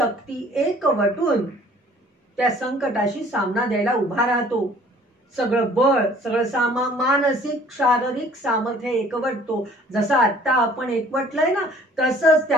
एकवटून त्या संकटाशी सामना द्यायला उभा राहतो. सगळं बळ, सगळं मानसिक शारीरिक सामर्थ्य एकवटतो. जसं आता आपण एकवटलंय ना, तसंच त्या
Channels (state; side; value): normal; both; correlation 0.54